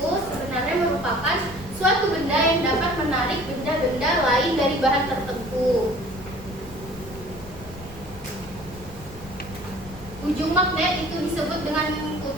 sebenarnya merupakan suatu benda yang dapat menarik benda-benda lain dari bahan tertentu. Ujung magnet itu disebut dengan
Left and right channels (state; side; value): noise; left; rumble, 18 dB below the sound